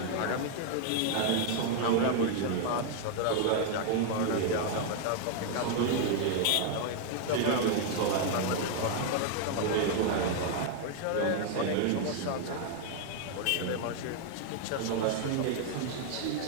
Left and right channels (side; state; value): both; different; correlation 0.00